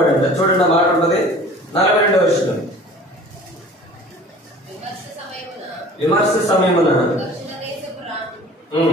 అంట. చూడండి, ఆ మాట ఉంటుంది 42వ వచనం. విమర్శ సమయమున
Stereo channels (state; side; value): normal; both; correlation 0.46